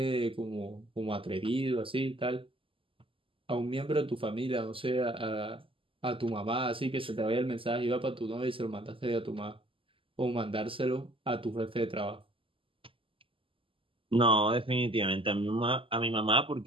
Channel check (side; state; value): left; late; 0.25 ms